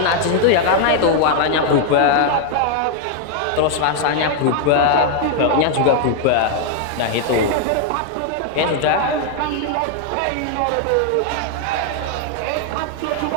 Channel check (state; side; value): different; both; correlation 0.00